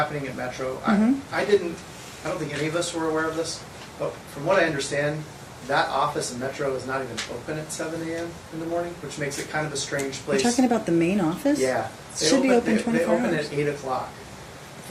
at Metro, Mhm. I don't think any of us were aware of this, but from what I understand, that office in Metro is not even open at 7 a.m. in the morning, which makes it kind of a strange You're place. talking about the main office? Yeah. It should be open They 24 open hours. at 8 o'clock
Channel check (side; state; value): both; identical; correlation 1.00